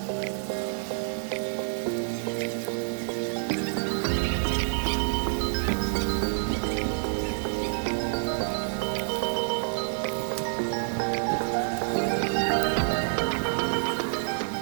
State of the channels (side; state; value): left; silent; digital silence